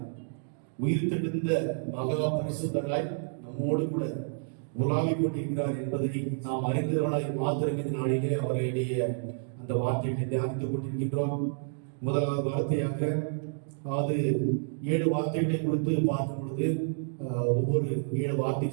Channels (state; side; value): silent; left; digital silence